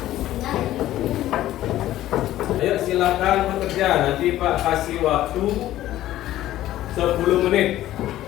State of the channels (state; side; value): quieter; right; 14.0 dB